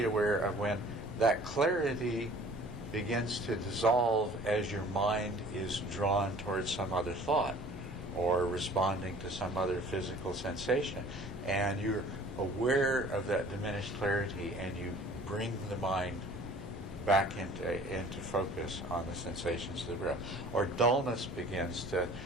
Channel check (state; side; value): normal; both; correlation 0.50